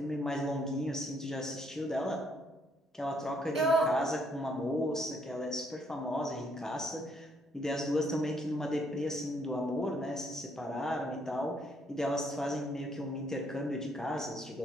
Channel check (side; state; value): both; normal; correlation 0.70